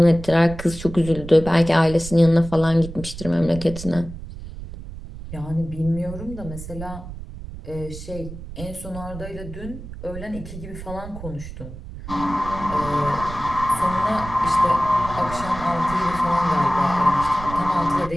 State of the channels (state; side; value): noise; right; rumble, 12 dB below the sound